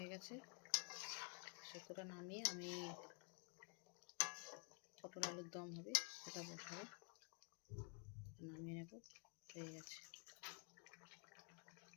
গেছে। শুক্তোটা নামিয়ে আমি পটল আলুর দম হবে, ওটা বসাবো, নামিয়ে নেব। হয়ে গেছে।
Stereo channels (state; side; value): quieter; right; 37.4 dB